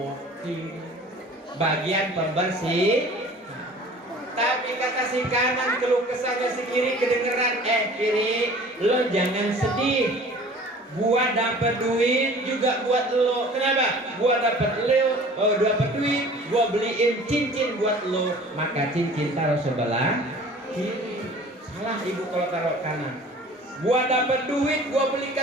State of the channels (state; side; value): normal; both; correlation 0.46